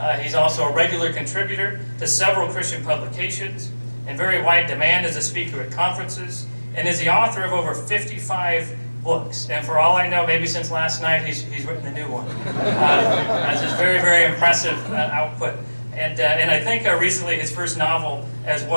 He's also a regular contributor to several Christian publications, in very wide demand as a speaker at conferences, and is the author of over 55 books. And for all I know, maybe since last night, he's written a new one. That's just very, very impressive output. And I think recently his first novel as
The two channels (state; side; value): inverted; both; correlation -1.00